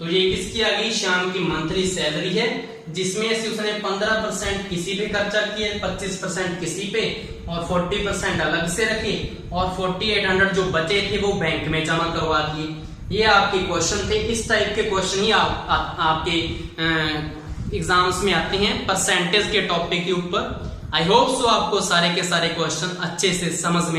ये किसकी आ गई, श्याम की मंथली सैलरी है, जिसमें से उसने 15% किसी पे खर्चा किए, 25% किसी पे और 40% अलग से रखे और 4800 जो बचे थे वो बैंक में जमा करवा दिए। ये आपके क्वेश्चन थे। इस टाइप के क्वेश्चन ही आपके एग्जाम्स में आते हैं परसेंटेज के टॉपिक के ऊपर। आई होप सो आपको सारे के सारे क्वेश्चन अच्छे से समझ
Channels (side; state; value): both; identical; correlation 1.00